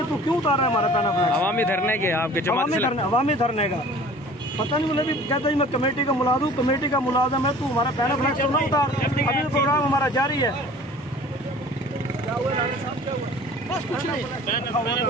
تو کیوں اتار رہا ہے ہمارا پہنا فلاس؟ عوامی دھرنے کے آپ کے جماعت سے عوامی دھرنے کا پتہ نہیں. مجھے بھی کہتا ہے میں کمیٹی کا ملازم ہوں, کمیٹی کا ملازم ہے, تو ہمارا پہنا فلاس تو نہ اتار, ابھی پروگرام ہمارا جاری ہے. بس کچھ نہیں,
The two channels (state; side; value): normal; both; correlation 0.47